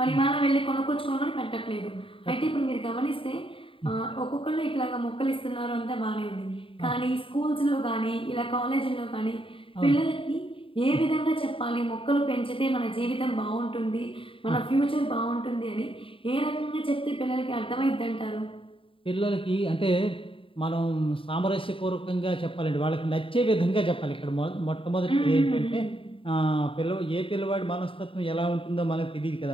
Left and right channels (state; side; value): late; right; 0.26 ms